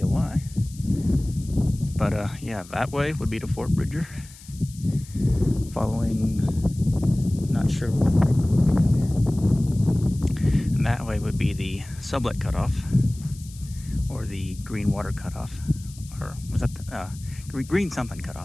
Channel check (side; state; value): left; noise; hiss, 20 dB below the sound